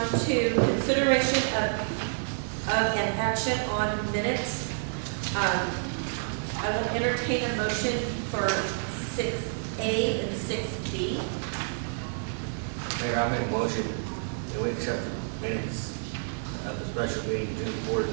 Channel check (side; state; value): left; silent; digital silence